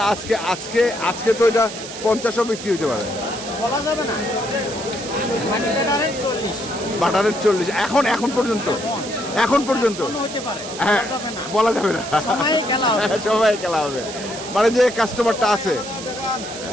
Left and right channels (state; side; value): noise; right; hiss, 11 dB below the sound